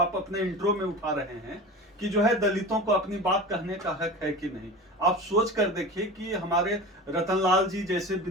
अपने इंट्रो में उठा रहे हैं कि जो है दलितों को अपनी बात कहने का हक है कि नहीं। आप सोच कर देखिए कि हमारे रतनलाल जी जैसे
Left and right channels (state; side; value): normal; both; correlation 0.32